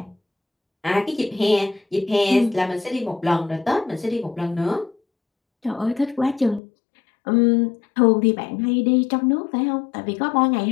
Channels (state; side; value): drops out; right; at 6.6 s